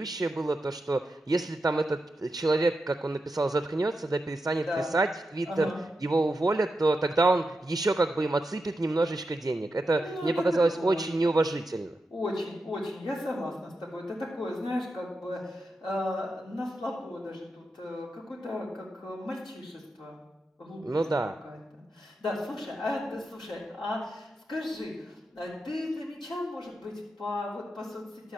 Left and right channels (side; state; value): both; normal; correlation 0.88